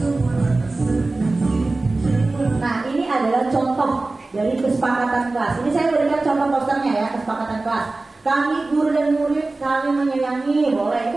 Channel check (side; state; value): left; quieter; 3.3 dB